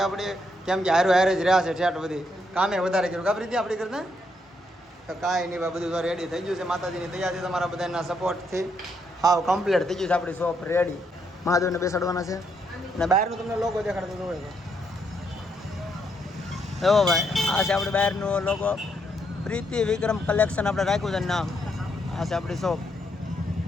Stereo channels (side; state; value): both; normal; correlation 0.76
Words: આપણે, કેમ કે હારે હારે જ રહ્યા છે ઠેઠ બધી કામે વધારે કર્યું કાપરી હતી આપણી કરતા. તો કાંઈ નહીં ભાઈ, બધું તો રેડી થઈ ગયું છે માતાજીની દયાથી, તમારા બધાના સપોર્ટથી હાવ કમ્પ્લીટ થઈ ગયું છે. આપણી શોપ રેડી, મહાદેવને બેસાડવાના છે. અને બહારનું તમને લોગો દેખાડતો તો હોય તો એવો ભાઈ, આ છે આપણે બહારનું લોગો, પ્રીતિ વિક્રમ કલેક્શન આપણે રાખ્યું છે નામ. આ છે આપણી શોપ